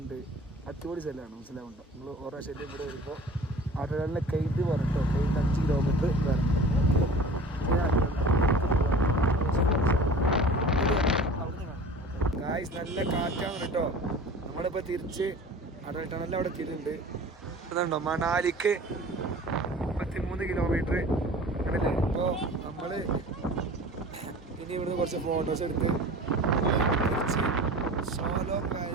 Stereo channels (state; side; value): normal; both; correlation 0.41